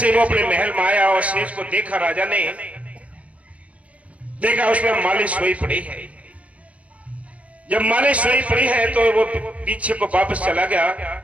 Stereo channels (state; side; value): late; left; 0.065 ms